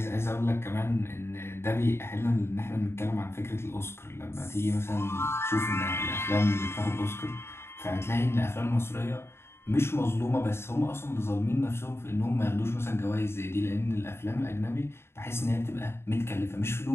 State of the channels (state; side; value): late; right; 0.12 ms